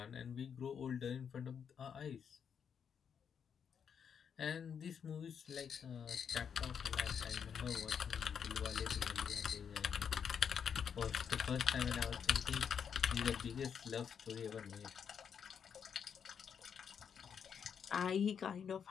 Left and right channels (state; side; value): quieter; right; 7.3 dB